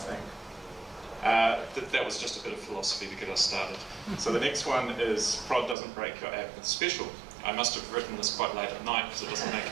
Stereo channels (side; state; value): left; drops out; at 5.8 s